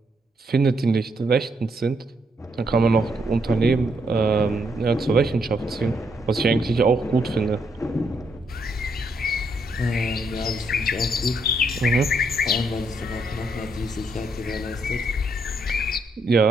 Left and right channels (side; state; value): both; normal; correlation 0.75